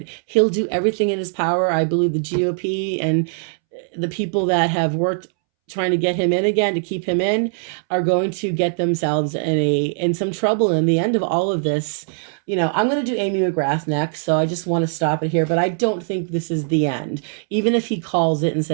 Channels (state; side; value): silent; left; 65 dB below the other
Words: He'll do everything in his power. I believe the GOP and the people that have worked trying to get him in again, to keep him in, are going to get themselves in some trouble. In the end of all of this, I'm going to do Amy Mcgrath next, so I just want to stop it here. But I don't think this is the end, even if he calls it and